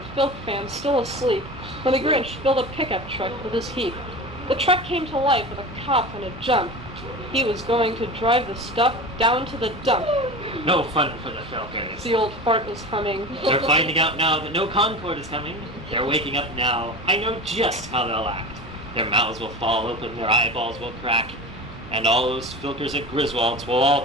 Filk fans still asleep when the Grinch filled a pickup truck with his heap. The truck came to life with a cough and a jump. He was going to drive the stuff down to the dump. no fun for the Falcons. The old fart was humming. They're finding out now that no Concord is coming. They're waking up now. I know just how they'll act. Their mouths will fall open, their eyeballs will crack, and all those Filkers at Griswold's will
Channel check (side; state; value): both; normal; correlation 0.31